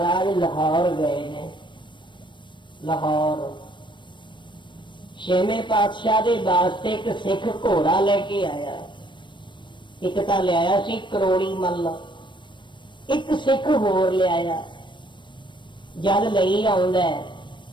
लाहौर गए ने। लाहौर 6वें पातशाह के वास्ते एक सिख घोड़ा लेके आया। एक तो लिया सी करोड़ी मल, एक सिख होर लिया। जल लई आउंदा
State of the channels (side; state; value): right; late; 0.23 ms